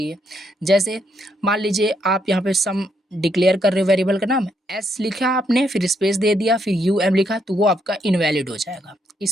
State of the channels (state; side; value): normal; both; correlation 0.75